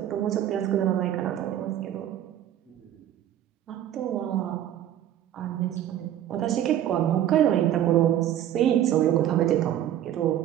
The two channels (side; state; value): left; quieter; 11.5 dB